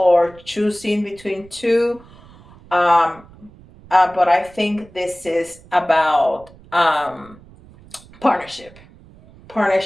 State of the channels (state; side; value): noise; right; rumble, 23 dB below the sound